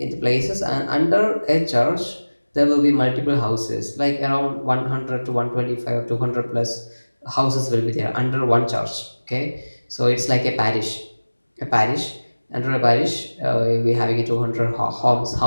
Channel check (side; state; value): both; inverted; correlation -1.00